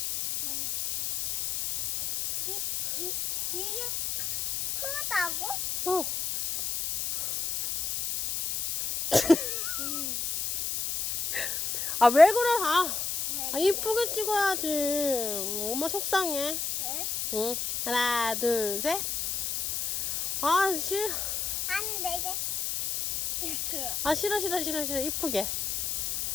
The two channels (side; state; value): left; noise; hiss, 2 dB below the sound